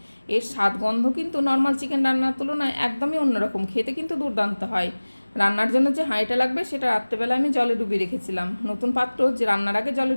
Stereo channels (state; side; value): inverted; both; correlation -1.00